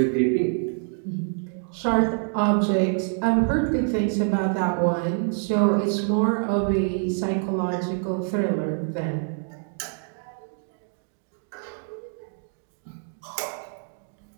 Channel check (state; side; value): silent; left; 56 dB below the other